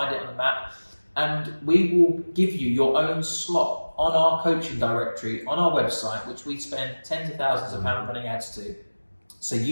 it on the map. And we will give you your own slot on our coaching directory on our website, which we spend tens of thousands of pounds running ads to. So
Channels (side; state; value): both; inverted; correlation -1.00